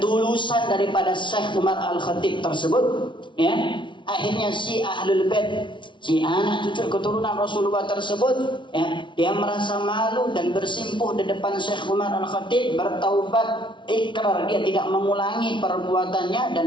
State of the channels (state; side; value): late; right; 0.24 ms